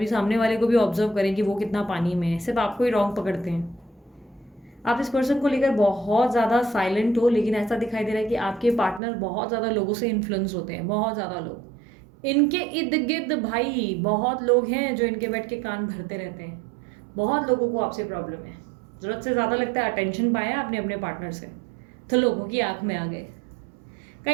सामने वाले को भी ऑब्जर्व करें कि वो कितना पानी में है, सिर्फ आपको ही रॉन्ग पकड़ते हैं। आप इस पर्सन को लेकर बहुत ज़्यादा साइलेंट हो, लेकिन ऐसा दिखाई दे रहा है कि आपके पार्टनर बहुत ज़्यादा लोगों से इन्फ्लुएंस होते हैं, बहुत ज़्यादा लोग इनके इर्द गिर्द। भाई बहुत लोग हैं जो इनके बैठ के कान भरते रहते हैं, बहुत लोगों को आपसे प्रॉब्लम है। ज़रूरत से ज़्यादा लगता है अटेंशन पाया आपने अपने पार्टनर से तो लोगों की आंख में आ गए।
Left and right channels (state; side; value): drops out; left; at 9.0 s